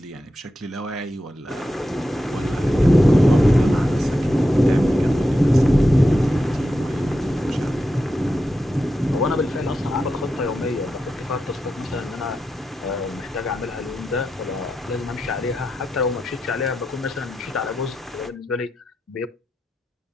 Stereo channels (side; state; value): both; normal; correlation 0.88